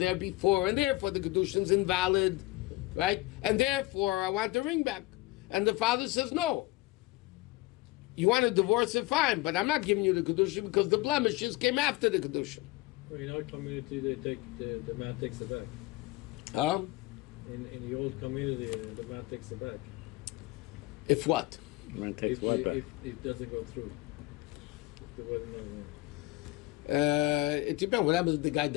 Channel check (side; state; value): right; quieter; 20.0 dB